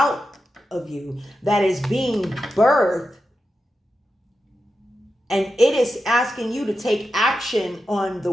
of you, that is being birthed. And it is asking you to take action on the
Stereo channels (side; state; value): both; normal; correlation 0.90